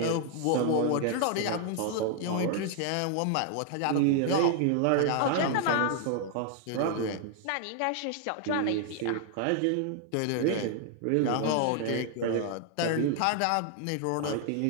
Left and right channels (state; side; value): different; both; correlation 0.00